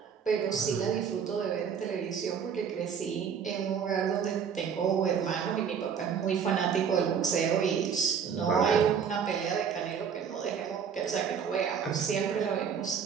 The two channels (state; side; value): quieter; left; 7.1 dB